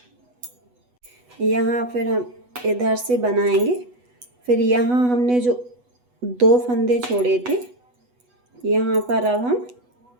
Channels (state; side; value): late; left; 8.1 ms